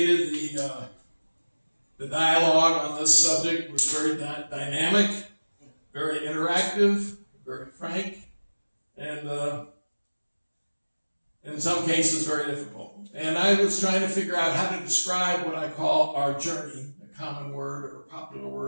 the dialogue on this subject was very dynamic, very interactive, very frank, and in some cases very difficult. And I was trying to figure out how to describe what I call our journey, a common word or a popular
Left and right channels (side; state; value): both; inverted; correlation -1.00